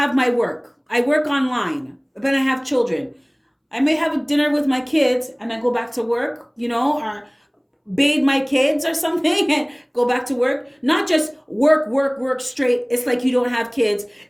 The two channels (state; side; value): identical; both; correlation 1.00